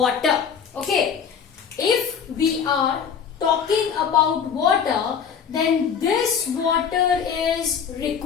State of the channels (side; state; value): right; quieter; 7.2 dB